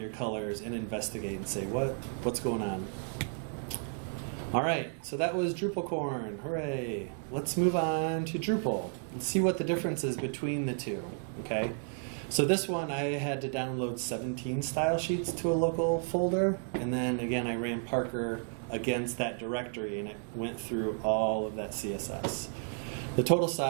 colors and investigate and say, what's going on? All right, so that was DrupalCorn. Hooray. Let's move on to Drupal. Let's see what the difference is between the two, okay? So this one, I had to download 17 style sheets to a local folder, and then again, I ran Parker against that directory, and it went through all of that CSS. The total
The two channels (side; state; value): left; silent; 56 dB below the other